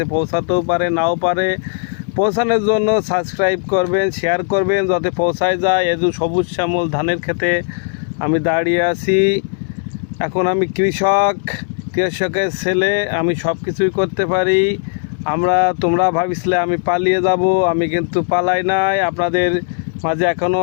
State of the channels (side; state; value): right; silent; digital silence